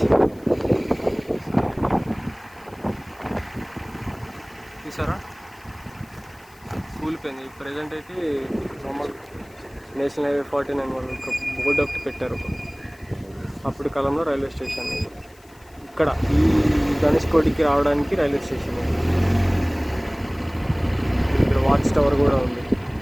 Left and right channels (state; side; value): noise; left; hiss, 29 dB below the sound